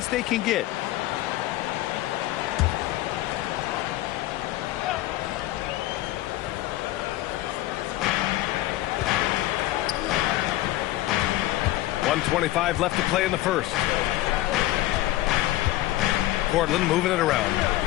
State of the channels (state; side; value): quieter; right; 16.2 dB